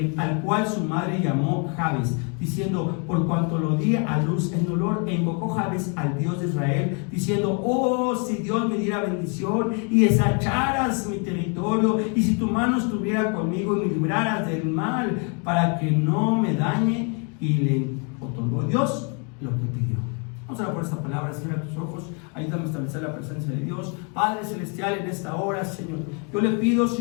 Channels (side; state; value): right; quieter; 36.5 dB